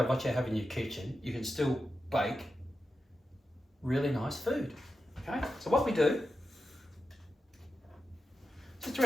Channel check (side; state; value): both; normal; correlation 0.90